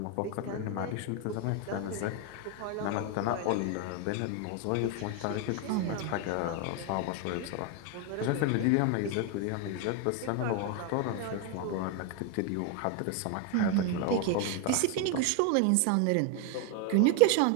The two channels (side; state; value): both; different; correlation 0.01